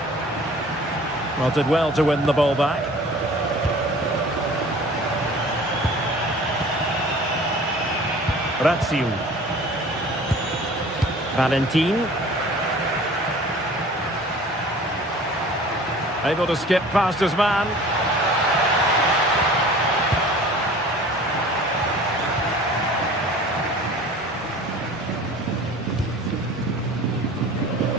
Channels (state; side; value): normal; both; correlation 0.45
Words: Well, did well to win the ball back. Razziu. Valentin. Able to skip past his man.